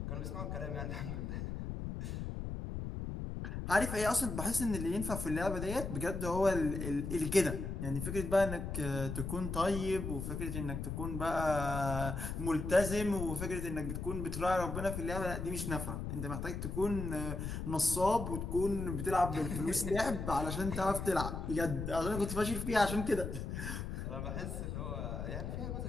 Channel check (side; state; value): left; noise; rumble, 4 dB below the sound